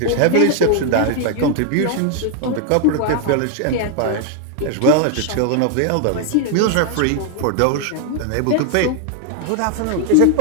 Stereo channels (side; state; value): both; different; correlation 0.00